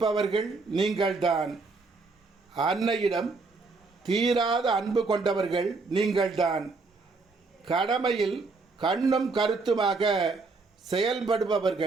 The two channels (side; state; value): left; quieter; 4.0 dB